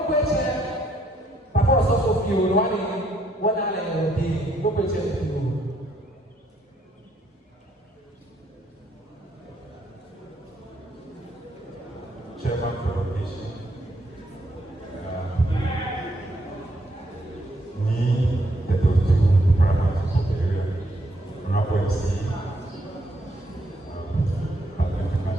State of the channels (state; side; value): normal; both; correlation 0.72